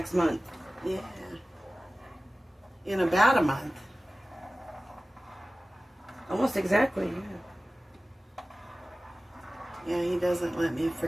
month. Yeah. In about a month. Almost exactly, yeah. Yeah, he doesn't let me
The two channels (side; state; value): both; normal; correlation 0.96